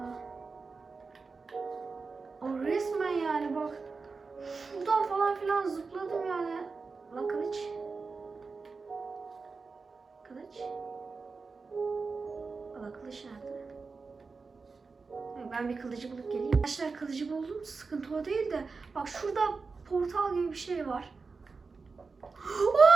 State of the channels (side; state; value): left; quieter; 4.4 dB